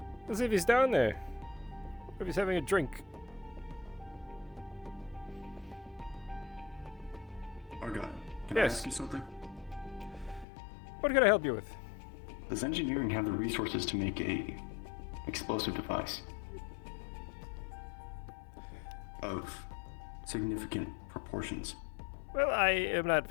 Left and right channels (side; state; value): right; drops out; at 10.5 s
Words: Let's see if he's down there. Or if he's having a drink. Argyll, can I ask you something? What can I help you with? Does engineering have the resources to make a explosive device of significant proportions. Well, I am not